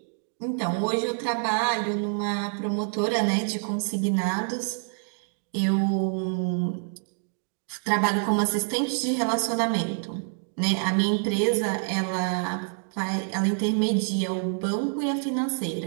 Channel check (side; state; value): left; silent; digital silence